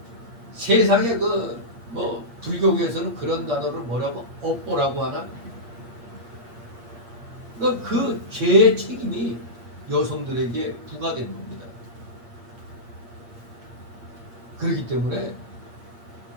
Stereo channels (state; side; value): late; left; 8.6 ms